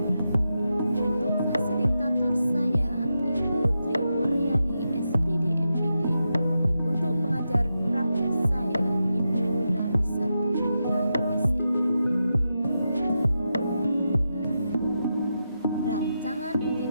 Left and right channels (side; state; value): both; inverted; correlation -0.88